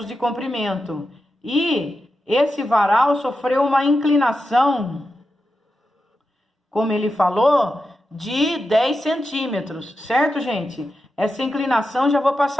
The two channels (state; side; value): normal; both; correlation 0.89